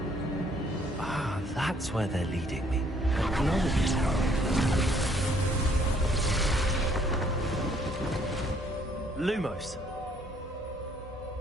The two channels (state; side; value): normal; both; correlation 0.64